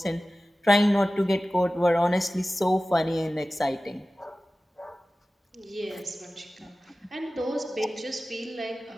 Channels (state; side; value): normal; both; correlation 0.96